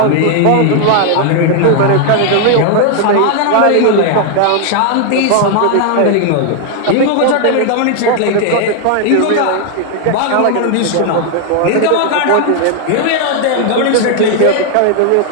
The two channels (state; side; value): different; both; correlation 0.00